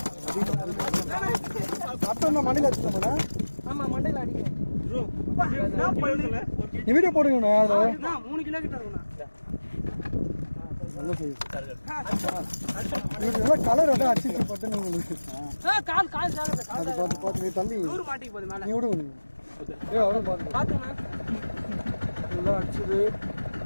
மண்ணில வச்சுட்டோம்னா மண்டையில அடிக்கிறேன். நீ வீடியோ போடுங்கண்ணா. 3 கிலோ கிட்ட இருக்குண்ணா. நல்லா செய்யுது. கலர் வந்து அடிச்சு போட்டு பார்த்து நீ தம்பி மாட்டிக்கு போகுது மேல. நீ விடுங்க. பாத்துண்ணா நல்லா அடிச்சது.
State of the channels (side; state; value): both; inverted; correlation -1.00